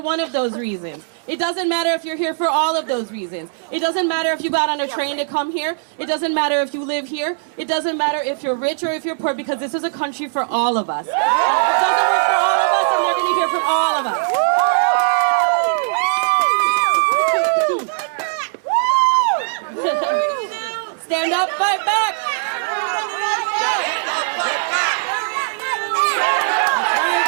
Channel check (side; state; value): left; silent; 66 dB below the other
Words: one of those reasons. It doesn't matter if you're here for all of those reasons. It doesn't matter if you got on a train to come here. It doesn't matter if you live here. It doesn't matter if you're rich or if you're poor, because this is a country for all of us. And if it doesn't work for all of us, then they're going to hear from all of us. Stand up, fight back.